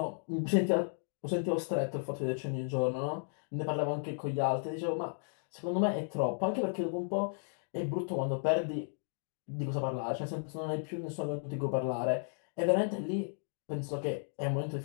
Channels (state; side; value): silent; right; digital silence